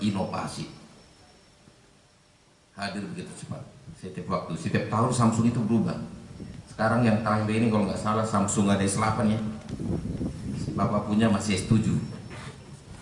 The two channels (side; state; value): both; identical; correlation 1.00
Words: Hadir begitu cepat. Setiap waktu, setiap tahun Samsung itu berubah. Sekarang yang terakhir ini kalau nggak salah Samsung ada S8 ya. Bapak punya masih S7.